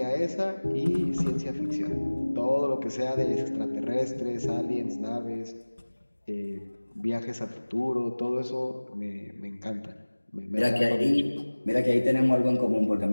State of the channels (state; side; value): inverted; both; correlation -1.00